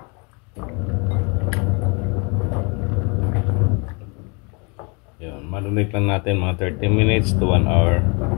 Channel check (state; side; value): quieter; right; 32.0 dB